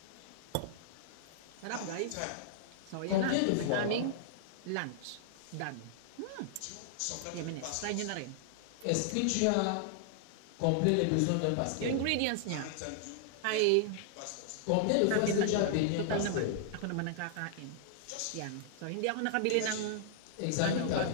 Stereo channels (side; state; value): both; different; correlation -0.01